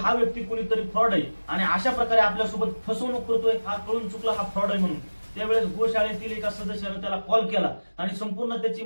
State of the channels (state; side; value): inverted; both; correlation -1.00